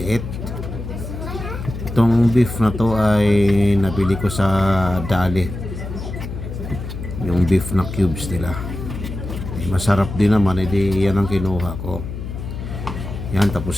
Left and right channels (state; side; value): noise; left; hum, 8 dB below the sound